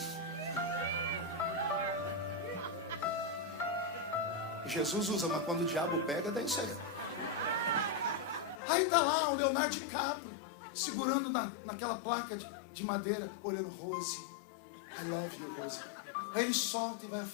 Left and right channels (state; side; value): drops out; right; at 8.6 s